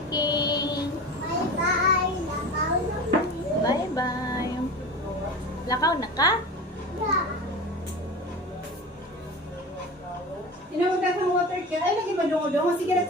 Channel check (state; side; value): normal; both; correlation 0.32